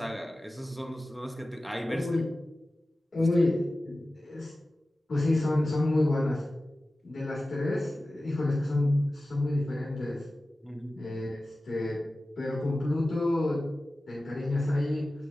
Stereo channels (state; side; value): normal; both; correlation 0.95